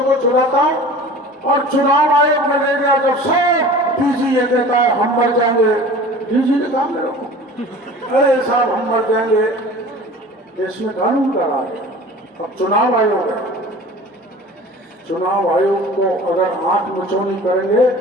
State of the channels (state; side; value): normal; both; correlation 0.41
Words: को छुड़ाता हूँ और चुनाव आयोग में ले गया जब सब डीजी ये कहता है हम मर जाएंगे। डीजी ने कहा मेरे को, अरे साहब हम मर जाएंगे, इसमें कानून का राज है। अब चुनाव आयोग है, चुनाव आयोग को अगर आंख मचौनी करेंगे,